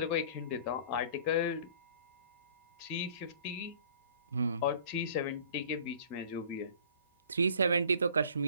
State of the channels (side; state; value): both; inverted; correlation -0.50